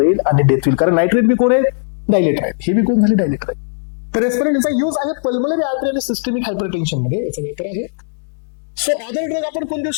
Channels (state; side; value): silent; right; 68 dB below the other